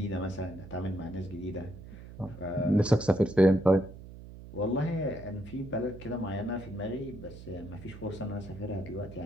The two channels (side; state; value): right; noise; hum, 15 dB below the sound